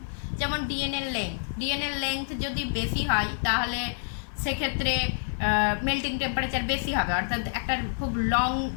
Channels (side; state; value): right; silent; 59 dB below the other